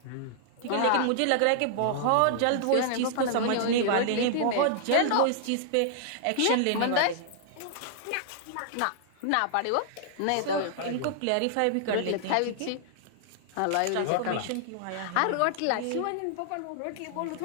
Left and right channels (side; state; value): both; different; correlation -0.01